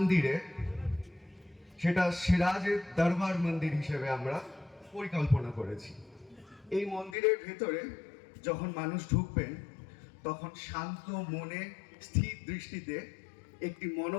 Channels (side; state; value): right; drops out; at 7.2 s